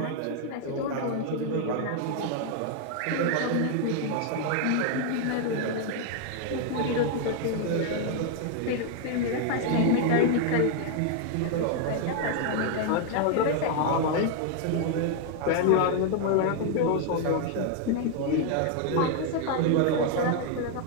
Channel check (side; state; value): both; different; correlation 0.00